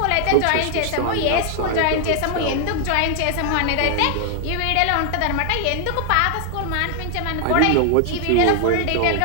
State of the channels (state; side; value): different; both; correlation 0.00